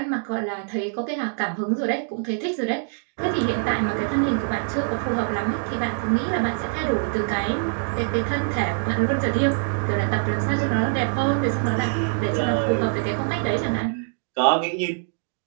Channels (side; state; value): left; silent; digital silence